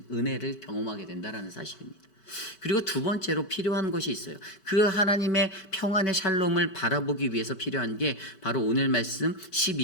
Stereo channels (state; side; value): late; right; 5.2 ms